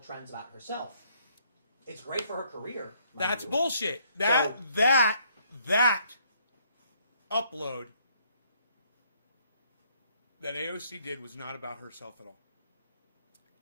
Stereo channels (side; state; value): both; inverted; correlation -0.66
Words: trends about herself, it's great for her career. That's bullshit. That upload that AOC did was not about herself at all.